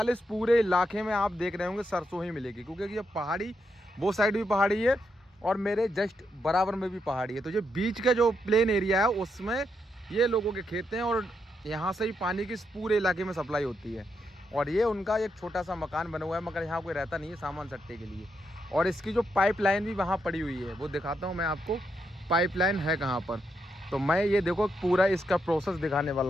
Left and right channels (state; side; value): normal; both; correlation 0.81